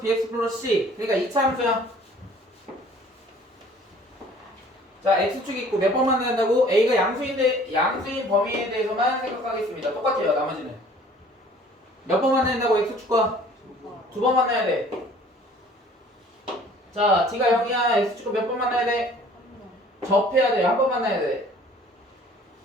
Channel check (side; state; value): both; normal; correlation 0.52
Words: bx 플러스 c. 그러니까 2차 함수야. 자, x축이 있고 몇 번 만나야 한다고? a가 양수인데 양수인 범위에 대해서만 생각하겠습니다. 똑같아요, 나머지는. 몇 번 만나야 한다고? x축과? 두 번 만나야 돼. 자, d가 0이야. x축과 몇 번 만나야 돼? 접해야 돼. 한 번 만나야 돼.